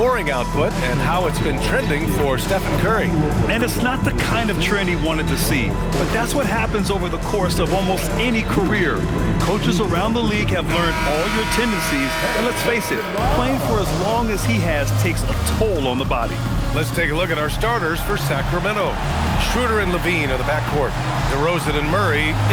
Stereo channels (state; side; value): identical; both; correlation 1.00